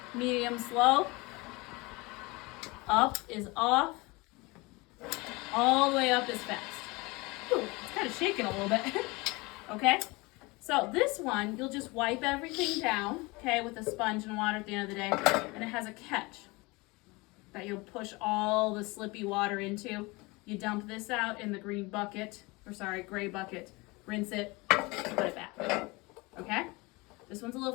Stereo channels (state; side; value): quieter; right; 24.6 dB